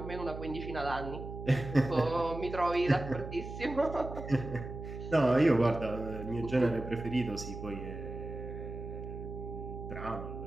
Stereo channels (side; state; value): right; noise; hum, 9 dB below the sound